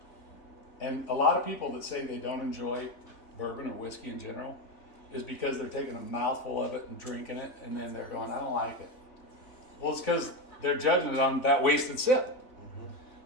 And a lot of people that say they don't enjoy bourbon or whiskey in general is because they're taking a mouthful of it and drinking it, and then they're going, I don't like it. Well, it's because they're judging it on that wasted sip.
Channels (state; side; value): late; right; 3.6 ms